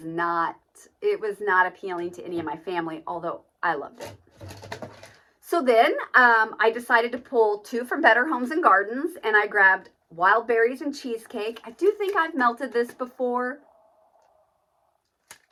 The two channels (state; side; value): identical; both; correlation 1.00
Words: not appealing to any of my family, although I loved it. So then I decided to pull 2 from Better Homes and Gardens, and I grabbed Wild Berries and Cheesecake. I do think I've melted this before.